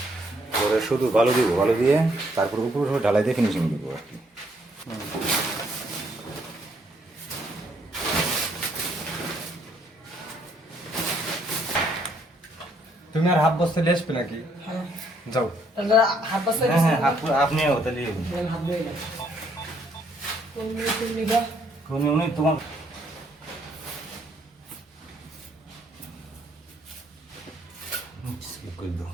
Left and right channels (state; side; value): normal; both; correlation 0.69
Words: পরে শুধু বালু দিব, বালু দিয়ে তারপর উপরে ঢালাই দিয়ে ফিনিশিং দিব আর কি। তুমি আর হাফ বস্তা নিয়ে আসবে নাকি? যাও। হাফ বস্তা হ্যাঁ হ্যাঁ, আপনি তাহলে উনি তোমার করে দাও।